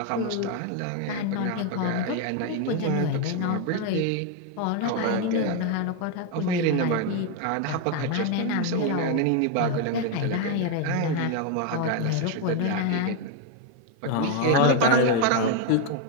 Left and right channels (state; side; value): different; both; correlation 0.01